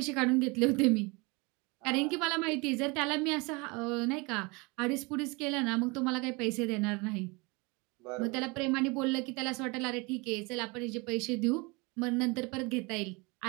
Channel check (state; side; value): quieter; left; 27.4 dB